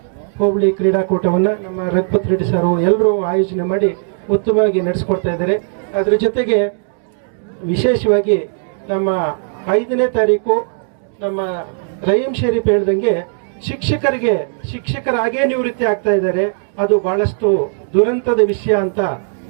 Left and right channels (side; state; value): left; silent; digital silence